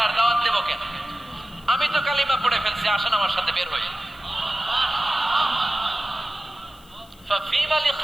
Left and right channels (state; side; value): noise; left; hiss, 27 dB below the sound